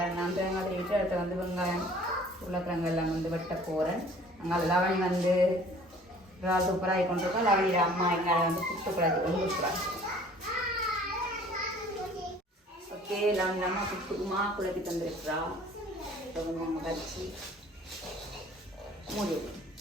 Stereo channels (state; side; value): normal; both; correlation 0.51